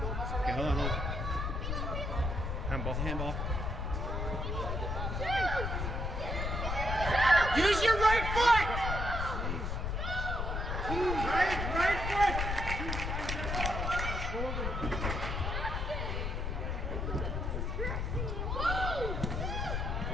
mess around. Okay, hold on. Handball. Handball. Use your right foot! Right foot!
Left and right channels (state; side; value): noise; left; rumble, 1 dB below the sound